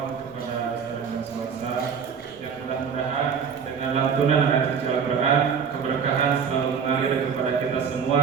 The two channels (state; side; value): quieter; left; 6.7 dB